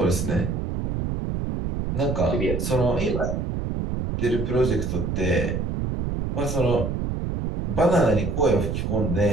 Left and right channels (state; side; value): noise; right; rumble, 2 dB below the sound